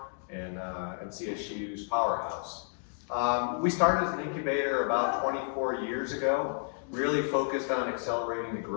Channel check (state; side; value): silent; right; digital silence